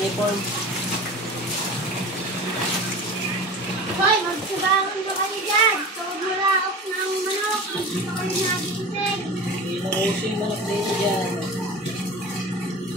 Hoy, magsabangan ba kayo dyan? Tawag mo laok ng manok. Hindi pa kayo nagising. Inuuso yung manok dito dyan.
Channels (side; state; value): both; normal; correlation 0.34